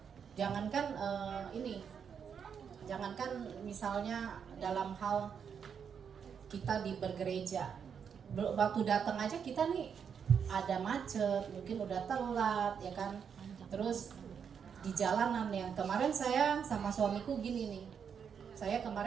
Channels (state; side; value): quieter; left; 7.2 dB